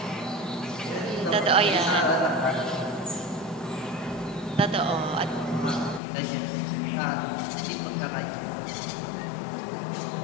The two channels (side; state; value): right; drops out; at 6.0 s